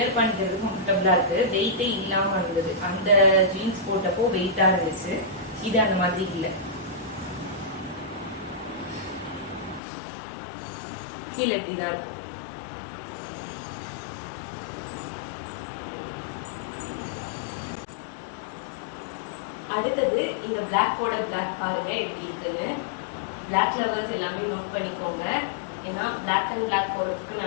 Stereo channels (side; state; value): right; drops out; at 9.8 s